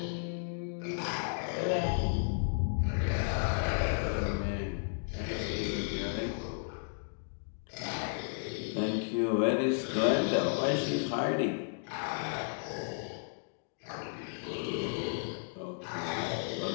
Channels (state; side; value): silent; right; digital silence